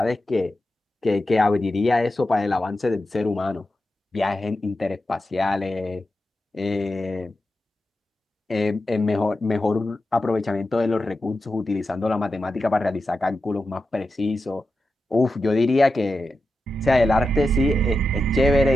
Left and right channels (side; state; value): both; normal; correlation 0.90